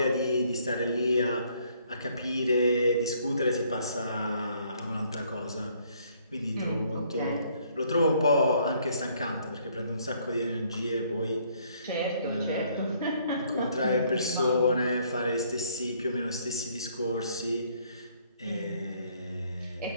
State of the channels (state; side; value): inverted; both; correlation -0.65